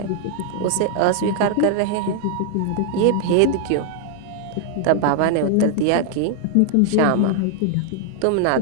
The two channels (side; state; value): both; different; correlation 0.00